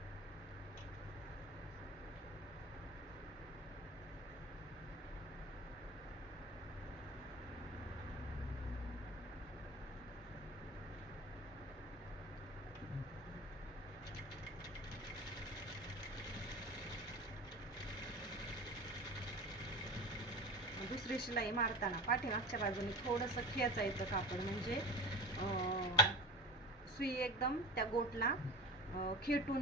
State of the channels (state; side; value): normal; both; correlation 0.32